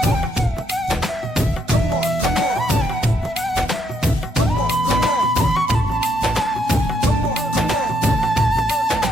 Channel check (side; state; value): both; normal; correlation 0.74